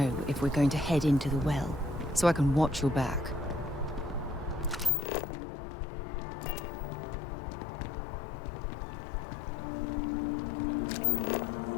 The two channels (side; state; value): right; drops out; at 4.9 s